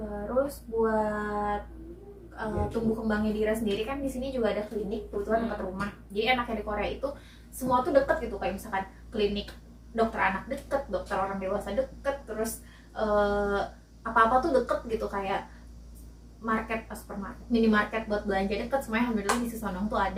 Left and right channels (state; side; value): identical; both; correlation 1.00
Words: buat tumbuh kembangnya Dira sendiri kan di sini juga ada klinik kebetulan dekat rumah. Jadi anaknya di Korea itu semua tuh deket gitu, kayak misalkan klinik dokter anak deket, dokter orang dewasa deket, terus apa-apa tuh deket gitu, kayak market, supermarket, minimarket buat belanja deket, semuanya alhamdulillah di Sesonong tuh